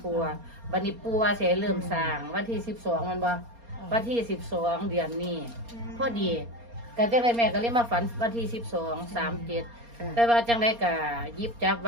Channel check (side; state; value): left; late; 4.3 ms